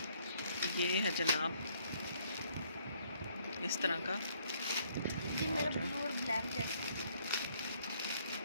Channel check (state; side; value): inverted; both; correlation -0.67